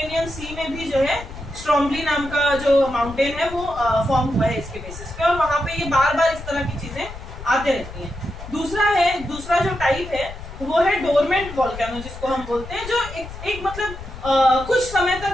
सी में भी जो है स्ट्रोम्बली नाम का जो माउंटेन है वो फॉर्म हुआ है इसके बेसिस पे, और वहां पे ये बार इस तरह की चीजें आते रहती हैं। दूसरा जो टाइप है वो है डोरमेंट वोल्केनो, जिसको हम बोलते हैं, जो एक मतलब कुछ समय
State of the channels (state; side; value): noise; left; rumble, 12 dB below the sound